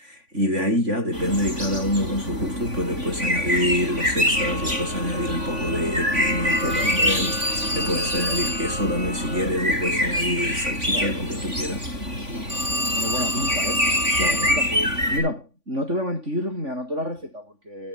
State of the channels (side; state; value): left; late; 3.5 ms